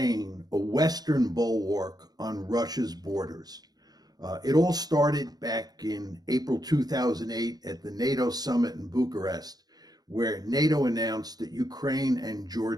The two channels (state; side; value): late; left; 0.19 ms